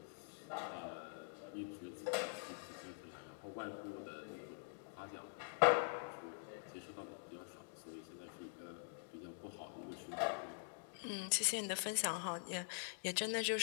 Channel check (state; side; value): silent; right; digital silence